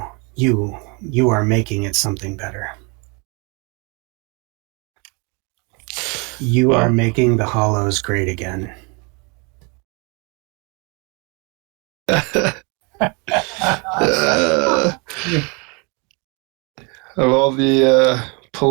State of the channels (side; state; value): left; quieter; 31.4 dB